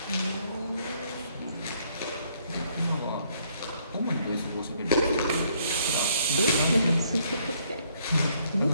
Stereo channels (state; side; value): inverted; both; correlation -0.68